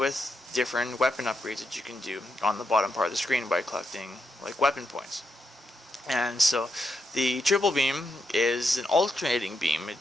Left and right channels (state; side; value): normal; both; correlation 0.83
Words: different weapon upgrades that you can do on the bottom part of the screen by collecting like weapon points. And so the triple beam is an alternating beam. It